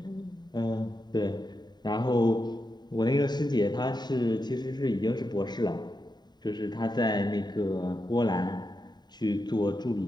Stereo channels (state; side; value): late; right; 0.20 ms